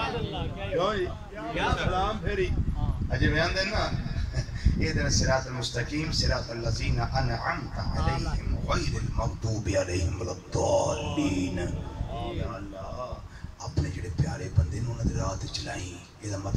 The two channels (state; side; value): identical; both; correlation 1.00